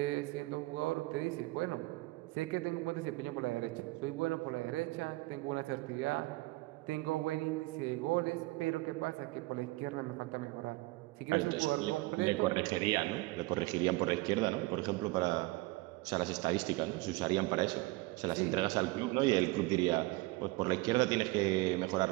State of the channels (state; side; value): quieter; left; 21.7 dB